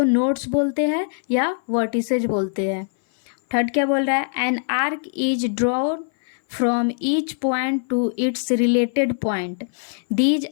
नोड्स बोलते हैं या वर्टिसेज बोलते हैं। थर्ड क्या बोल रहा है, an arc is drawn from each point to its related point, these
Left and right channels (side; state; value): right; silent; 57 dB below the other